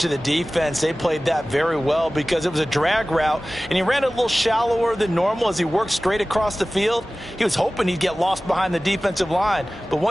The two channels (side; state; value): both; normal; correlation 0.97